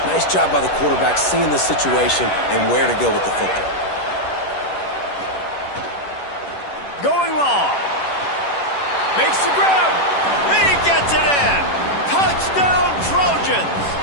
Nice job by the quarterback seeing the situation and where to go with the football. Going long. Makes the grab. He gets it in. Touchdown, Trojans.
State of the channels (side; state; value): right; late; 10 ms